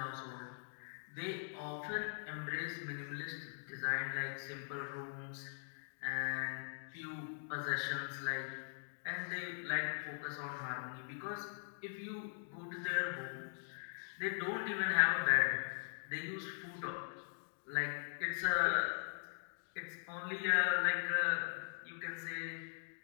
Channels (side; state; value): right; silent; digital silence